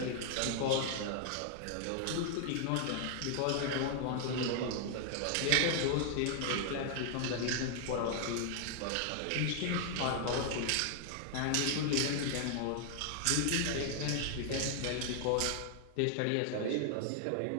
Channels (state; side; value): different; both; correlation 0.00